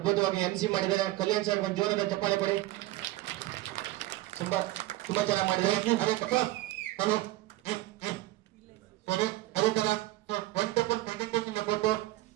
MC ಮಾಡಿದ್ದಾರೆ. ಕಲ್ಯಾಣ್ ಸರ್ ಒಂದು ಜೋರಾದ ಚಪ್ಪಾಳೆ ಕೊಡಿ. ತುಂಬಾ ಚೆನ್ನಾಗಿ ಮಾಡಿದ್ದಾರೆ. ಅದೇ ತರ ವಂಡರ್ಫುಲ್ ಪ್ರೆಸೆಂಟೇಷನ್ ಕೊಟ್ಟು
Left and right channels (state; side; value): quieter; left; 17.4 dB